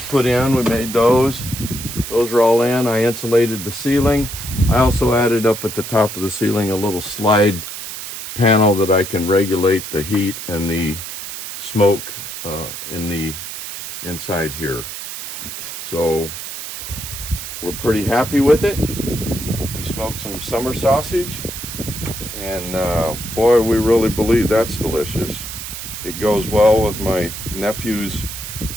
put in. We made those. Those are all in. I insulated the ceiling. I also added up at the top of the ceiling a little slide panel that I can regulate the heat and the smoke in the inside here. So we're pretty happy with it. We smoked some summer sausage, and boy, we really believe that's delicious. It goes well with my nephew's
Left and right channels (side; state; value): right; noise; hiss, 8 dB below the sound